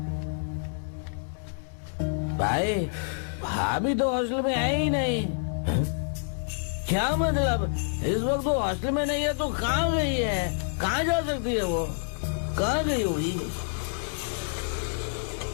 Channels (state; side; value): silent; right; digital silence